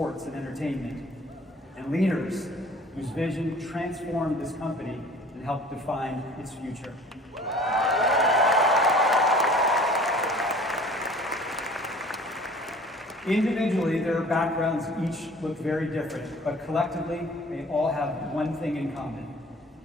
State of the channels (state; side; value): normal; both; correlation 0.48